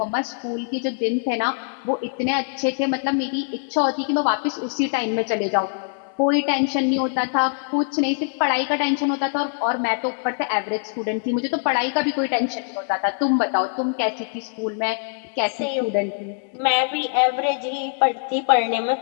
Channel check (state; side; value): silent; right; digital silence